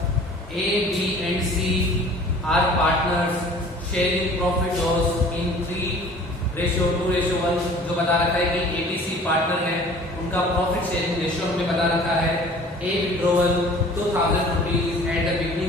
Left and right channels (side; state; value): both; normal; correlation 0.48